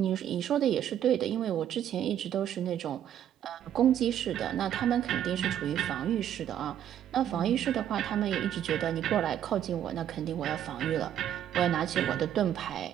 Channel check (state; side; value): quieter; left; 10.5 dB